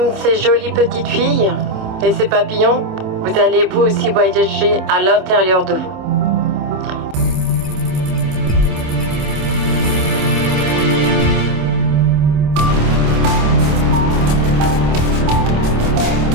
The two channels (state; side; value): late; left; 26 ms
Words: ces jolies petites filles et ces papillons, vous allez vous aussi voyager à l'intérieur de vous.